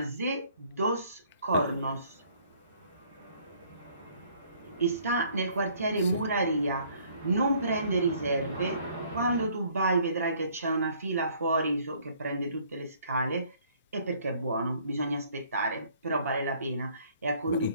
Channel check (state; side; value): inverted; both; correlation -0.61